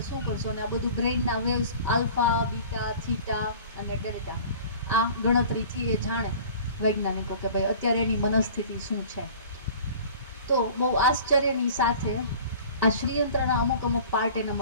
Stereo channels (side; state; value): both; inverted; correlation -0.44